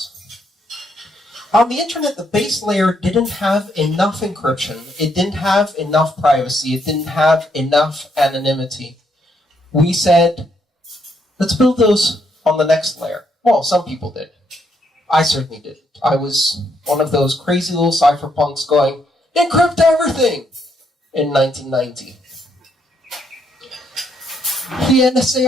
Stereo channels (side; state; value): both; normal; correlation 0.74